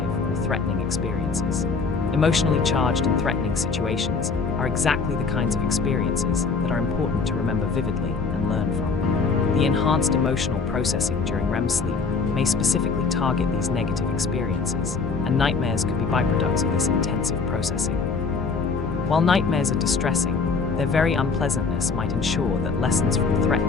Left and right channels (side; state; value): right; quieter; 4.7 dB